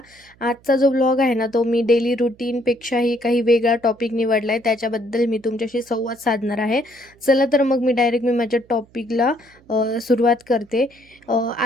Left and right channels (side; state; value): right; noise; hum, 30 dB below the sound